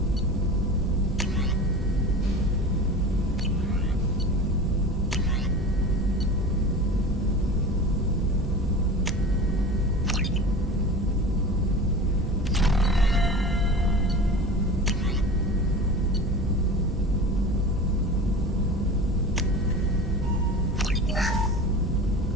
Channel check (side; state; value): both; normal; correlation 0.34